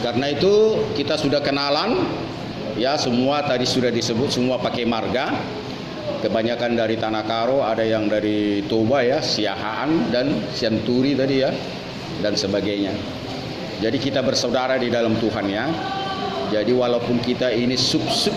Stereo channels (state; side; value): identical; both; correlation 1.00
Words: Karena itu kita sudah kenalan, ya semua tadi sudah disebut, semua pakai marga. Kebanyakan dari Tanah Karo, ada yang dari Toba ya, Siahaan dan Sianturi tadi ya, dan sebagainya. Jadi kita bersaudara di dalam Tuhan ya. Jadi walaupun kita ini sub